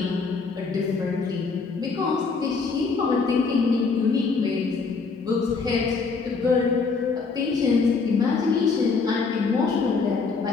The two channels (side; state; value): right; quieter; 4.6 dB